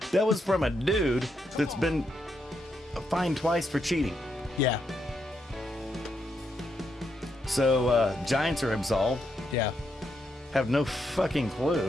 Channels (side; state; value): both; normal; correlation 0.80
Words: That was from a dude that's been fined twice for cheating. Yeah. So Giants are absolved. Yeah. Have no fucking